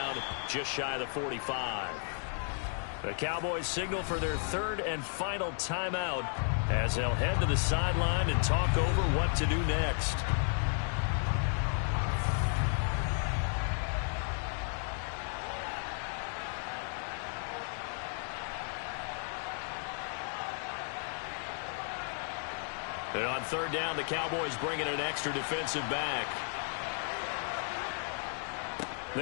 just shy of the 45. The Cowboys signal for their third and final timeout as they'll head to the sideline and talk over what to do next. And on third down, the Cowboys bring in an extra defensive back.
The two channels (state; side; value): silent; right; 55 dB below the other